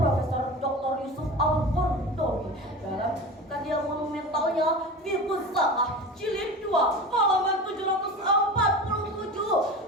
Dr. Yusuf Al-Qaradawi dalam karya monumentalnya Fiqhus Zakah jilid 2 halaman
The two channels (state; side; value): normal; both; correlation 0.31